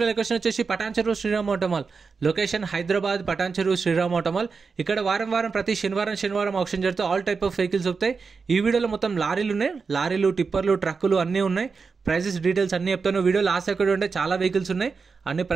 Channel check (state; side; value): quieter; left; 5.0 dB